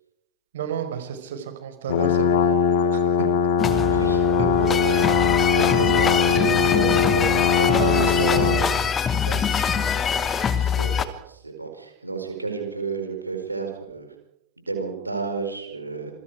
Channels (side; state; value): right; quieter; 5.0 dB